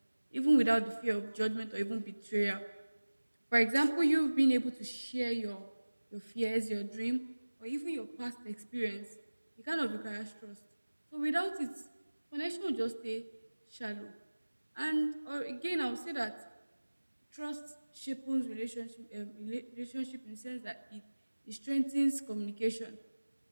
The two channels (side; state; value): both; inverted; correlation -1.00